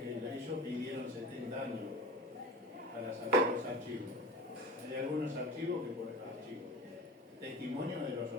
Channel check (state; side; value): normal; both; correlation 0.35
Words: ellos pidieron 70 años para sacar los archivos. Hay algunos archivos que por archivos. Testimonios de los